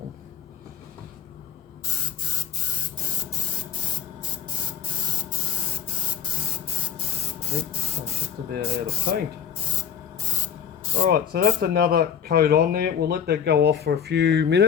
I think I'm just about out of paint. Alright, so that's another coat on there. We'll let that go off for a few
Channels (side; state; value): right; quieter; 8.3 dB